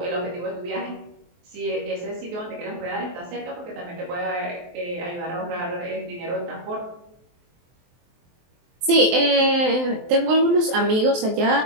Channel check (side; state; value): left; late; 23 ms